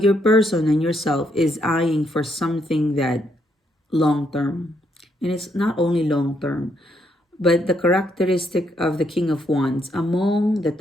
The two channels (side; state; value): both; normal; correlation 0.75